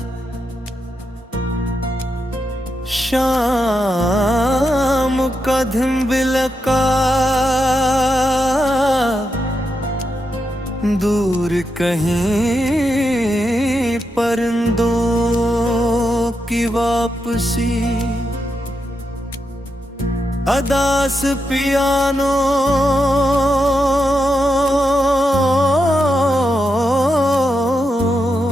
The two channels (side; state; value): both; normal; correlation 0.85